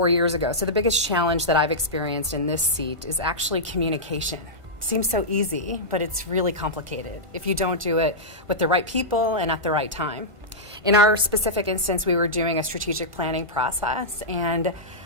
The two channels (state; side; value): late; left; 1.5 ms